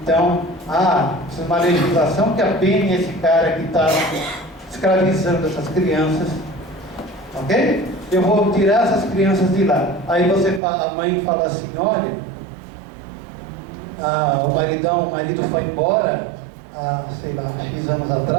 Então, precisa de uma legislação que apene esse cara que está escravizando essas crianças. Ok? Eu vou tirar essas crianças de lá. Aí a mãe fala assim, olha, o marido foi embora, sei lá, X anos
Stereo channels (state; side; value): drops out; left; at 10.6 s